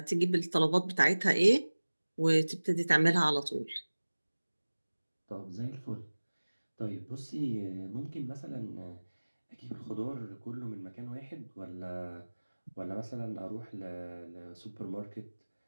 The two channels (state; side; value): inverted; both; correlation -1.00